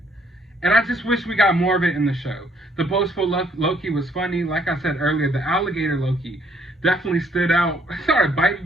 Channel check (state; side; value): normal; both; correlation 0.66